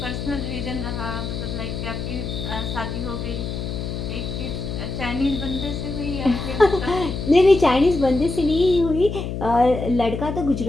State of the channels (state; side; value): noise; left; hum, 5 dB below the sound